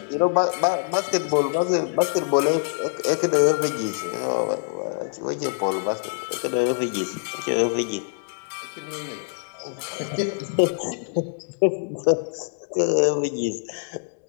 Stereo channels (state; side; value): silent; right; 62 dB below the other